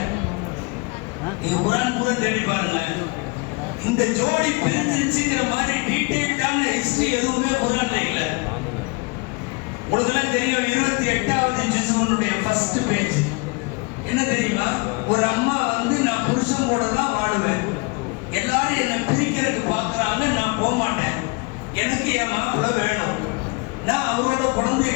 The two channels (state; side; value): quieter; right; 28.1 dB